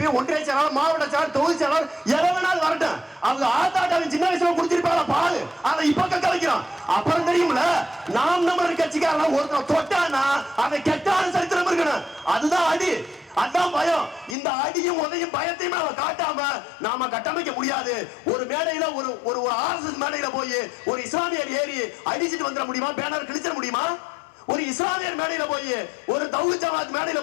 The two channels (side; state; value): right; drops out; at 14.4 s